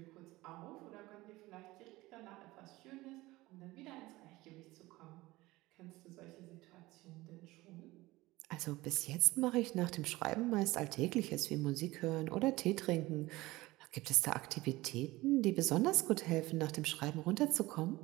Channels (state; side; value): quieter; left; 19.4 dB